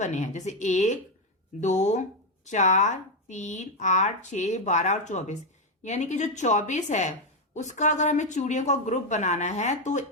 हैं, जैसे 1 2 4 3 8 6 12 और 24। यानी कि जो 24 है उसका अगर हमें चूड़ियों का ग्रुप बनाना है तो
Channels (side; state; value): both; normal; correlation 0.05